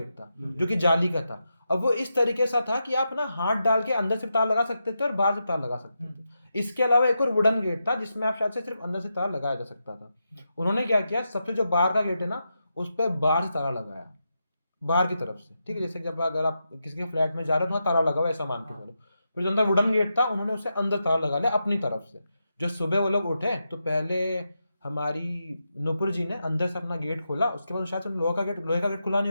था जो कि जाली का था। अब वो इस तरीके से था कि आप ना हाथ डाल के अंदर से तार लगा सकते थे और बाहर से तार लगा सकते थे। इसके अलावा एक और वुडन गेट था जिसमें आप शायद से सिर्फ अंदर से तार लगाया जा सकता था। उन्होंने क्या किया, सबसे जो बाहर का गेट है ना, उस पर बाहर से ताला लगाया, बाहर की तरफ से, ठीक है। जैसे जब अगर आप किसी के फ्लैट में जा रहे हो तो ताला लगा हुआ ऐसा मान के चलो। फिर जो अंदर वुडन गेट था उन्होंने उसे अंदर ताला लगा लिया अपनी तरफ से। जो सुबह वो लोग उठे तो पहले हमारी नुपुर जी ने अंदर से अपना गेट खोला, उसके बाद शायद लोहे का गेट खुला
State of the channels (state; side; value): inverted; both; correlation -0.87